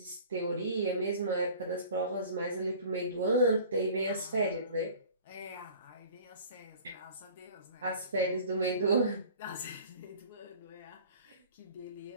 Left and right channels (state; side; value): inverted; both; correlation -0.45